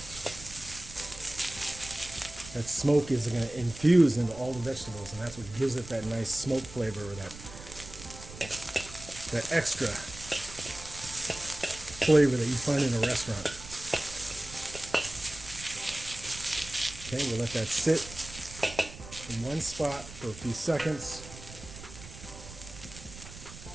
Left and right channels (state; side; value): noise; right; rumble, 15 dB below the sound